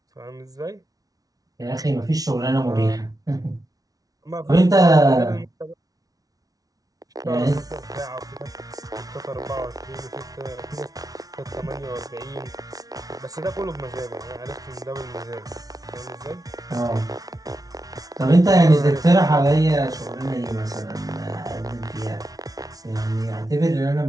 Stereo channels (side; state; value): left; late; 0.18 ms